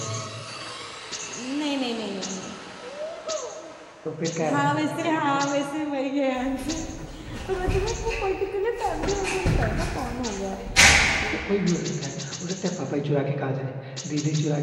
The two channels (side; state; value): both; identical; correlation 1.00